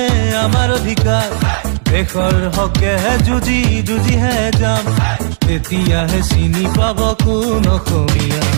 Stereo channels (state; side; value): silent; left; digital silence